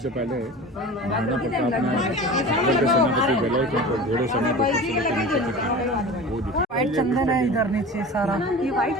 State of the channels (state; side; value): normal; both; correlation 0.35